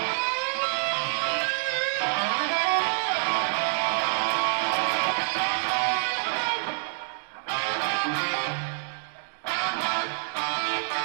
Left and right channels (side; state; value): left; silent; 60 dB below the other